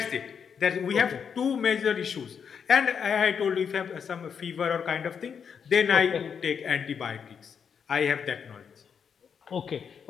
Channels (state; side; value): quieter; right; 7.0 dB